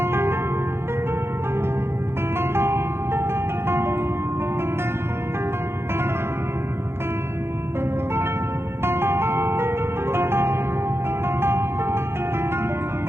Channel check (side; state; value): left; late; 0.12 ms